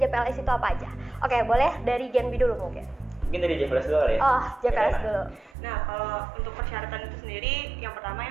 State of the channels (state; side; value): drops out; left; at 5.6 s